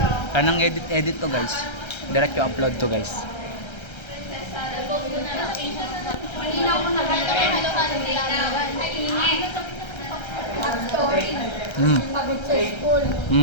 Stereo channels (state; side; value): late; right; 1.3 ms